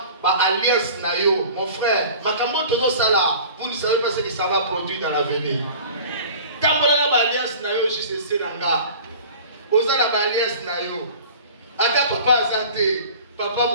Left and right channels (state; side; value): inverted; both; correlation -0.42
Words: alliance nayo, mon frère, vous ne savez pas ce que ça va produire dans l'avenir. Tant que alliance nayo, je sais nanga. Osala alliance nayo. Aka papa azate, papa